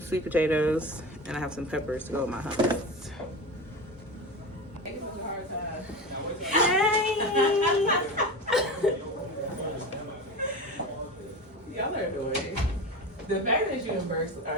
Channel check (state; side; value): normal; both; correlation 0.27